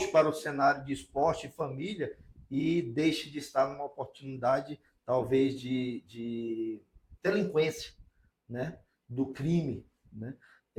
para o cenário de esporte e família e deixe de estar numa oportunidade talvez de delinquência, né? Do crime, né?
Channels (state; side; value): identical; both; correlation 1.00